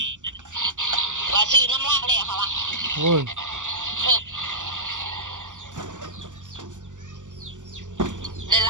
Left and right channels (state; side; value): late; left; 0.86 ms